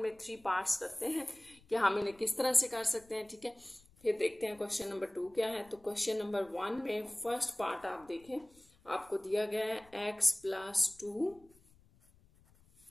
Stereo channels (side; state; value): left; noise; rumble, 29 dB below the sound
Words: में 3 पार्ट्स करते हैं कि हम इन्हें किस तरह से कर सकते हैं, ठीक है। फिर देखते हैं क्वेश्चन नंबर 2 क्या है। तो क्वेश्चन नंबर 1 में फर्स्ट पार्ट आप देखें, आपको दिया गया है x plus 2